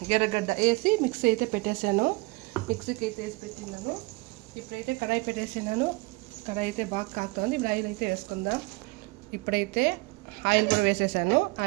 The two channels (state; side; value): quieter; left; 24.2 dB